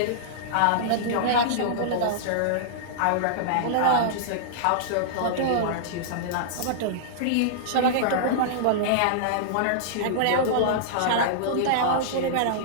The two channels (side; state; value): both; different; correlation -0.02